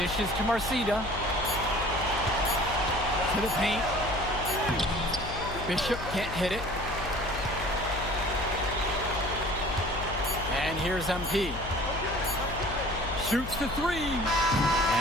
to Marcita. To the paint. Bishop can't hit it. And here's MP. Shoots the 3.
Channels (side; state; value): left; noise; hum, 8 dB below the sound